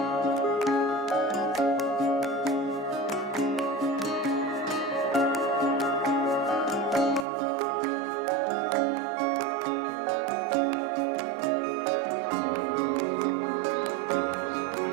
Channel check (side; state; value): left; drops out; at 7.2 s